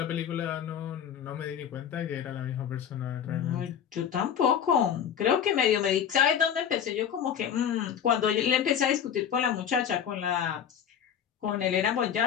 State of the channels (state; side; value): quieter; right; 8.7 dB